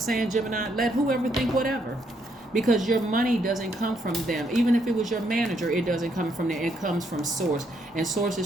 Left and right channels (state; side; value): normal; both; correlation 0.74